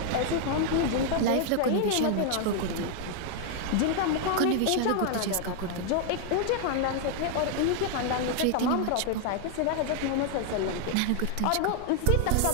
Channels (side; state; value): both; different; correlation 0.00